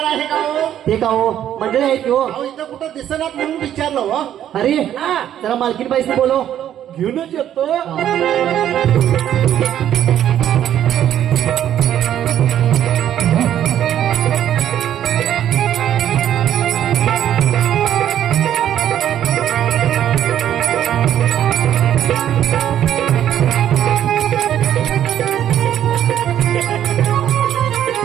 आहे का हो? ते का हो मंडळी आहेत की हो. अहो इथं कुठं दिसणार म्हणून विचारलं हो. अरे जरा मालकीन बाईसनी बोलो. घेऊनच येतो.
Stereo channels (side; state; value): left; quieter; 10.8 dB